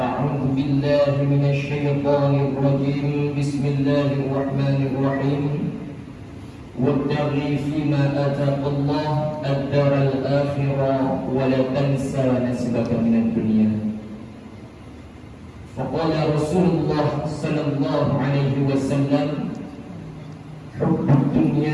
بالله من الشيطان الرجيم بسم الله الرحمن الرحيم وابتغ فيما آتاك الله الدار الآخرة ولا تنسى نصيبك من الدنيا. فقال رسول الله صلى الله عليه وسلم: حب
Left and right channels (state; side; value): identical; both; correlation 1.00